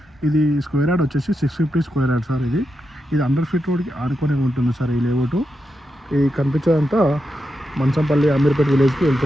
ఇది స్క్వేర్ యార్డ్ వచ్చేసి 650 స్క్వేర్ యార్డ్ సార్. ఇది 100 ఫీట్ రోడ్కి ఆనుకొని ఉంటుంది సార్. ఈ లేఅవుట్ ఈ కనిపించేదంతా మంచంపల్లి అమీర్పేట్ విలేజ్కి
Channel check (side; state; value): both; normal; correlation 0.86